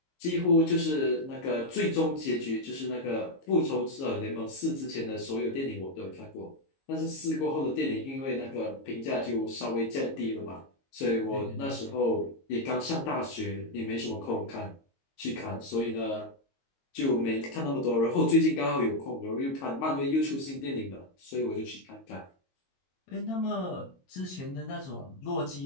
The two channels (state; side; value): late; right; 22 ms